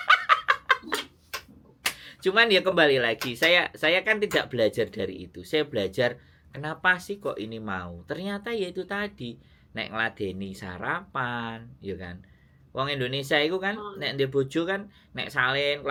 Cuman ya kembali lagi, saya kan tidak belajar dari itu. Saya belajar kenapa sih kok ini mau. Ternyata ya itu tadi, nek ngladeni sarapan, ya kan. Wong Indonesia itu kan nek ndek bojo kan nek salin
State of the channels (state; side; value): identical; both; correlation 1.00